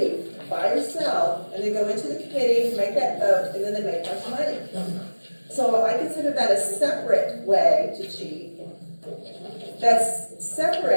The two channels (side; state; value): both; inverted; correlation -1.00